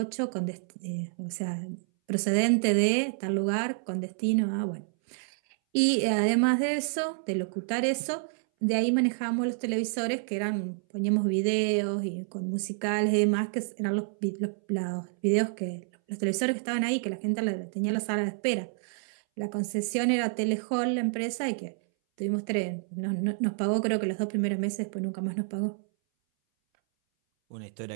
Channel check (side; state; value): left; silent; 59 dB below the other